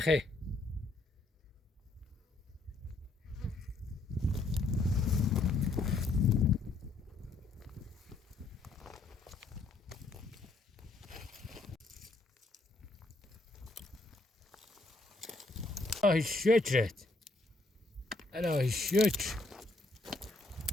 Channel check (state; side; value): quieter; right; 3.2 dB